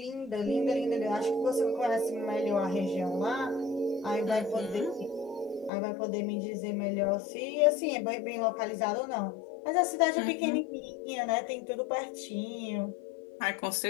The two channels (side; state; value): right; drops out; at 5.7 s